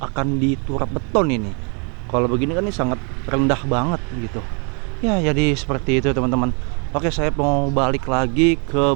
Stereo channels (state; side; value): quieter; left; 36.6 dB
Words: akan diturap beton ini. Kalau begini kan ini sangat rendah banget gitu ya. Jadi seperti itu teman-teman. Oke, saya mau balik lagi